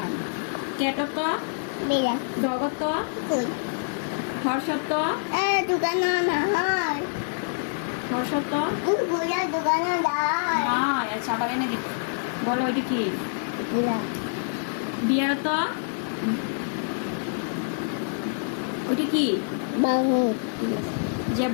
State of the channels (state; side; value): silent; right; digital silence